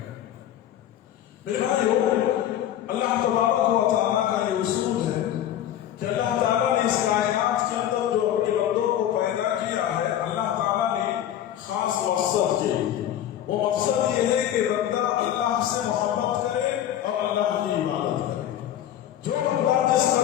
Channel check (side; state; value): right; quieter; 11.3 dB